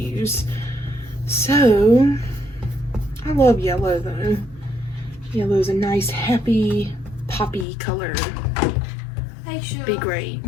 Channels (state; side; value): drops out; right; at 7.7 s